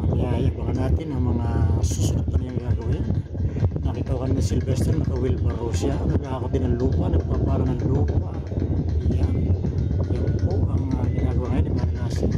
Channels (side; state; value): both; identical; correlation 1.00